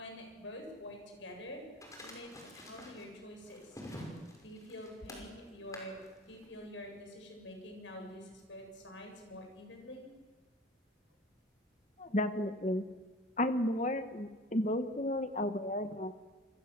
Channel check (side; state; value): both; normal; correlation 0.43